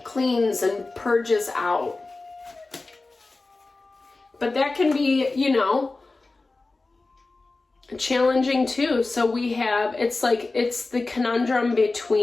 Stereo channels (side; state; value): right; quieter; 3.4 dB